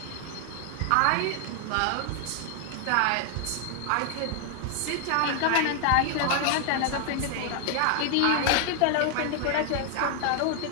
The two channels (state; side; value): different; both; correlation 0.00